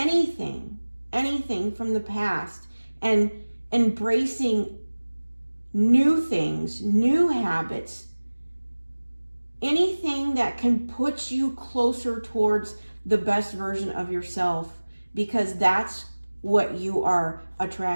from the past and embracing new things, new habits, anything that can put you closer towards the best version of yourself, because that's what you are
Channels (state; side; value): inverted; both; correlation -1.00